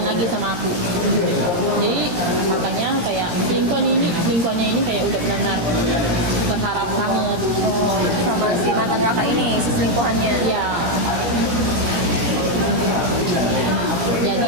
lagi sama aku. Jadi makanya kayak selingkuhannya ini kayak udah benar-benar berharap banget. Oh, sama si mantan kakak ini, si selingkuhannya. Iya.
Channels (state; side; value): late; left; 17 ms